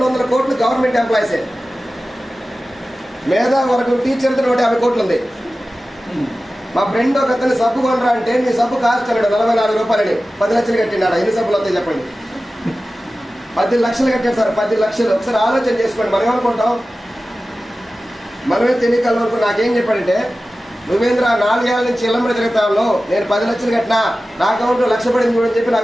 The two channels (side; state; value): both; normal; correlation 0.95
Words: కోట్లు గవర్నమెంట్ ఎంప్లాయీసే. మేధా వరకు టీచర్తో 150 కోట్లు ఉంది. మా ఫ్రెండ్ ఒక అతను సబ్బు కొనరా అంటే మీ సబ్బు కాస్ట్ అన్నాడు 44 రూపాయలని. 10 లక్షలు కట్టినాడు. ఎన్ని సబ్బులు వస్తాయి చెప్పండి? 10 లక్షలు కట్టాడు సార్. 10 లక్షలు. ఒకసారి ఆలోచన చేసుకోండి. మనం ఏమనుకుంటాం? మనమే తెలియకల వరకు నాకేం చెప్పాడంటే, నువ్వేంద్ర 4 ఏళ్ళ నుంచి ఇళ్ళమ్మడి తిరుగుతాను, నేను 10 లక్షలు కట్టినా, నా అకౌంట్లో 1,00,000 పడింది చూడని చెప్పి